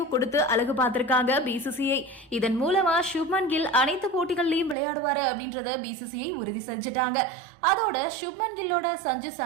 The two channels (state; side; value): drops out; left; at 4.8 s